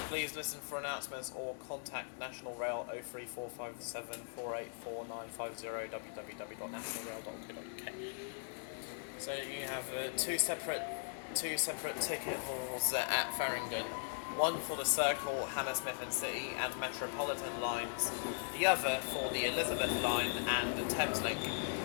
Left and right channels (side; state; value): right; silent; digital silence